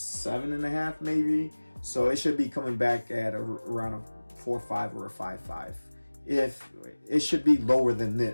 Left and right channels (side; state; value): both; inverted; correlation -1.00